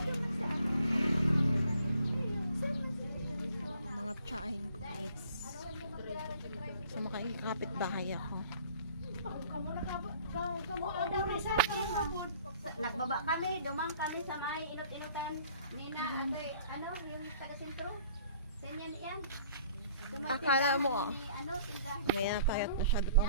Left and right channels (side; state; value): both; inverted; correlation -0.54